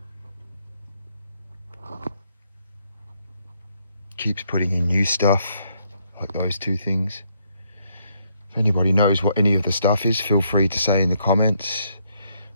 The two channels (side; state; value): both; inverted; correlation -0.72